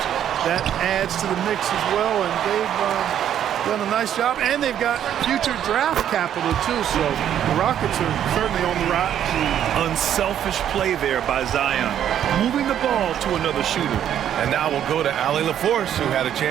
that adds to the mix as well. And they've done a nice job. And they've got future draft capital, too. So the Rockets are certainly on the rise. Unselfish play there by Zion, moving the ball to another shooter. And now we'll go to Allie LaForce, who had a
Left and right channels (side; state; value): left; quieter; 10.1 dB